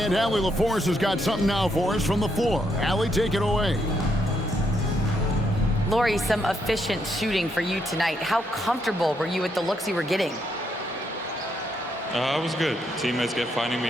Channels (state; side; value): normal; both; correlation 0.76